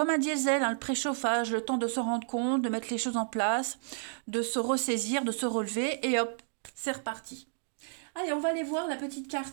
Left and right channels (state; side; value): silent; left; digital silence